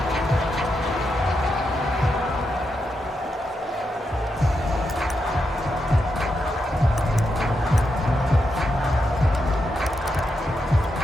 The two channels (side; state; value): both; normal; correlation 0.84